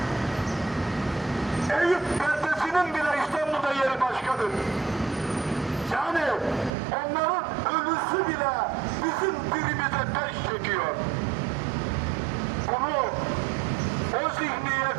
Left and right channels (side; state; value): left; drops out; at 6.7 s